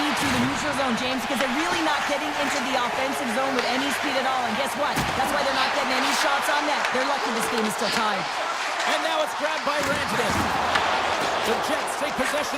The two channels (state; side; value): identical; both; correlation 1.00